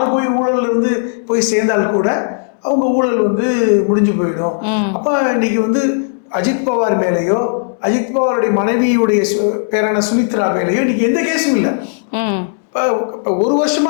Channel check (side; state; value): right; silent; digital silence